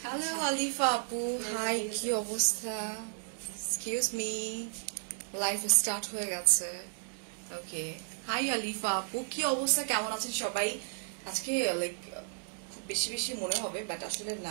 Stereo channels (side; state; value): left; silent; digital silence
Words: Hello Alifa Apu, hi ki obostha? Excuse me, live start hoye geche. Okay. Hi Alifa Apu, ki obostha kemon achen shobai? Ajke like খুব বেশি বেশি মনে হবে বাট আসলে